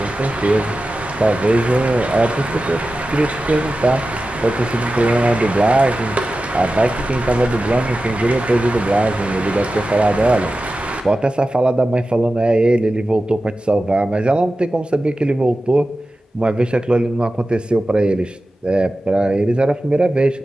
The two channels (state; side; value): normal; both; correlation 0.94